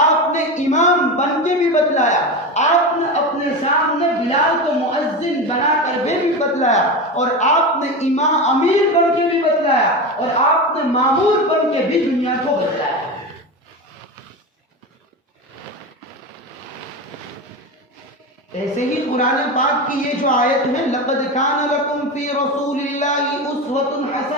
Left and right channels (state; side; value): normal; both; correlation 0.22